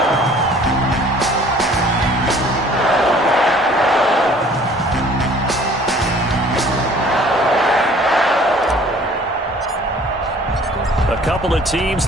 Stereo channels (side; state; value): both; normal; correlation 0.52